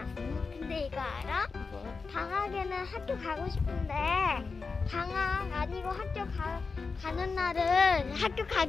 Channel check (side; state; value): right; quieter; 4.6 dB